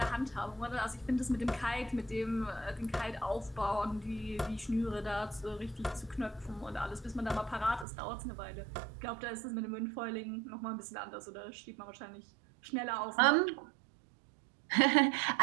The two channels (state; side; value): drops out; left; at 7.9 s